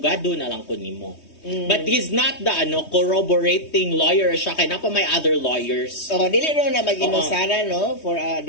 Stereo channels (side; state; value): right; late; 3.2 ms